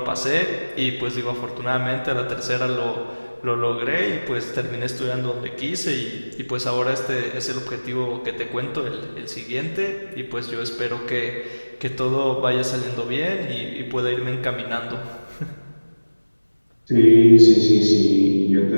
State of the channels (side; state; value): both; inverted; correlation -1.00